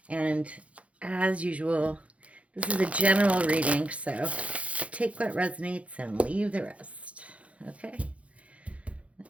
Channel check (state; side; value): late; left; 0.064 ms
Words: And as usual, this is a general reading, so take what resonates and leave the rest, okay?